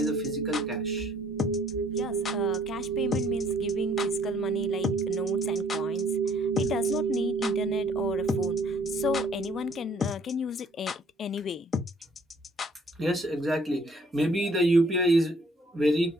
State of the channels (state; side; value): normal; both; correlation 0.61